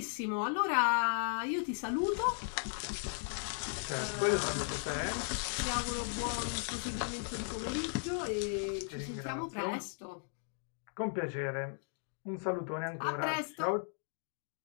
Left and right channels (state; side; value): silent; right; 53 dB below the other